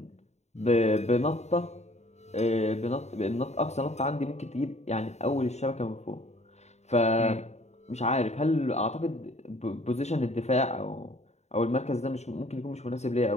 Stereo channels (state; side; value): late; right; 0.32 ms